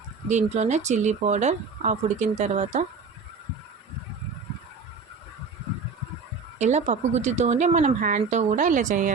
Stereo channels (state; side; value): quieter; left; 4.9 dB